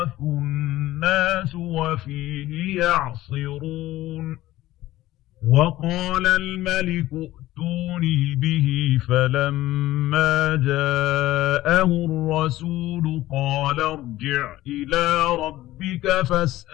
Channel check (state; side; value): quieter; right; 15.8 dB